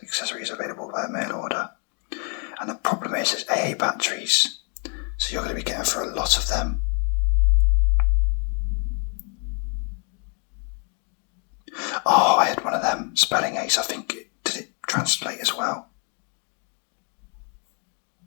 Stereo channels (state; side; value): quieter; right; 39.9 dB